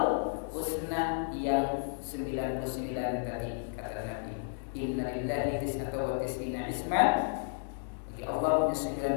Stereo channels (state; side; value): silent; right; digital silence